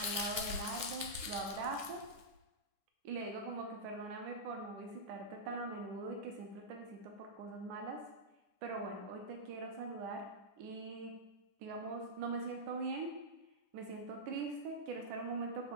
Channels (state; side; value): late; left; 10 ms